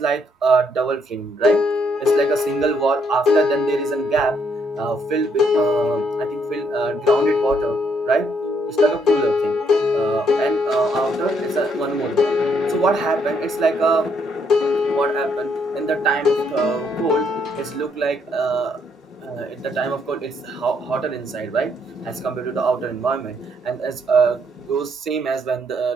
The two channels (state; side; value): normal; both; correlation 0.71